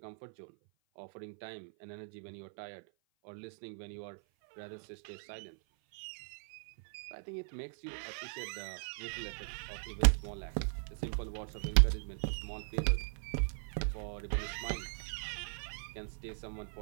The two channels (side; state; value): left; silent; 52 dB below the other